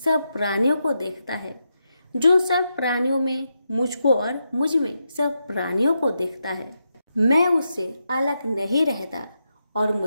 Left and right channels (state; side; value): inverted; both; correlation -0.85